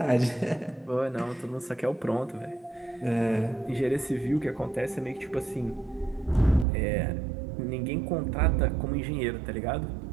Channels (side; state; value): left; drops out; at 6.7 s